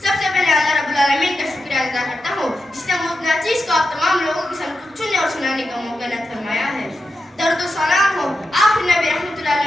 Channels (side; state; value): both; normal; correlation 0.89